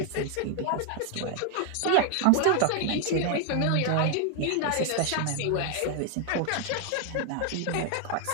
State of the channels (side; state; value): both; different; correlation 0.01